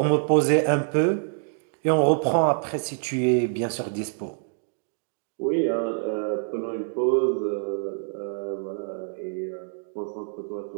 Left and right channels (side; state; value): left; silent; digital silence